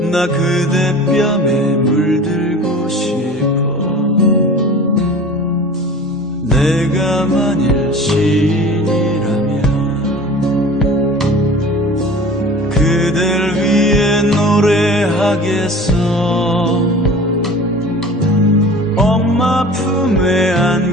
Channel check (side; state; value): both; normal; correlation 0.41